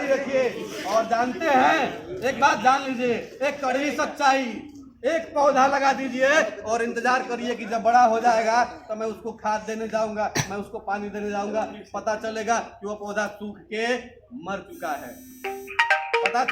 रखिए। और जानते हैं, एक बात जान लीजिए, एक कड़वी सच्चाई, एक पौधा लगा दीजिए और इंतजार करिए कि जब बड़ा हो जाएगा तो मैं उसको खाद देने जाऊंगा, मैं उसको पानी देने जाऊंगा, पता चलेगा कि वो पौधा सूख के मर चुका है। पता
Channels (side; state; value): both; identical; correlation 1.00